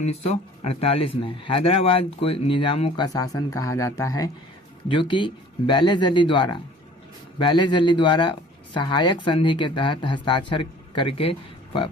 में। हैदराबाद को निजामों का शासन कहा जाता है, जो कि बैलेजली द्वारा सहायक संधि के तहत हस्ताक्षर करके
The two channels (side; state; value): both; normal; correlation 0.49